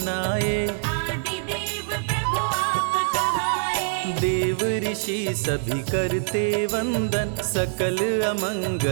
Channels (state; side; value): silent; left; digital silence